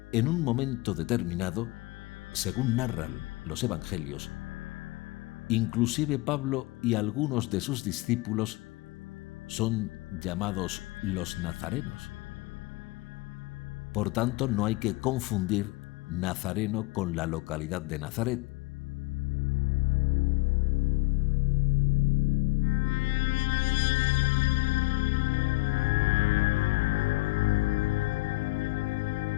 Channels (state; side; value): quieter; right; 23.1 dB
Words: en un momento determinado, según narran los evangelios, inclusive Pablo y algunos de sus discípulos son llamados los nazarenos. Por tanto, no hay que confundir Nazareno con la localidad de Nazaret.